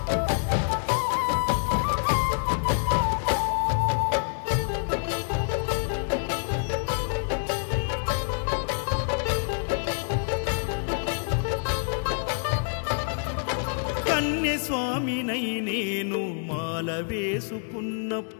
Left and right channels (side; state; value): right; silent; digital silence